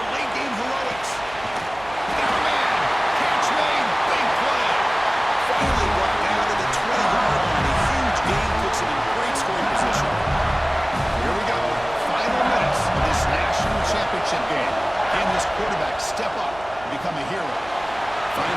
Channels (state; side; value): noise; right; hum, 19 dB below the sound